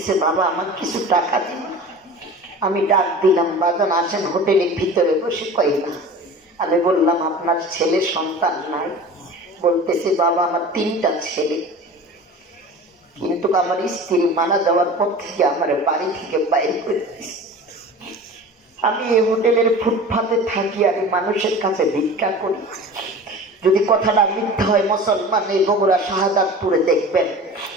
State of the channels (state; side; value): normal; both; correlation 0.37